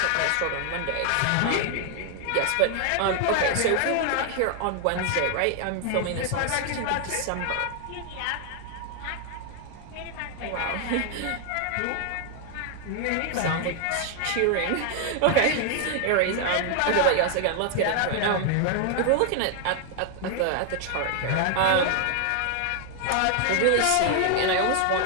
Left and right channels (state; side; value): different; both; correlation 0.00